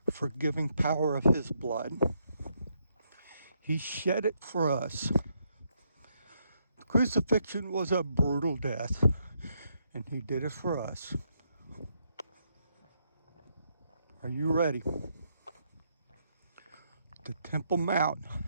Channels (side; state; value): both; inverted; correlation -0.76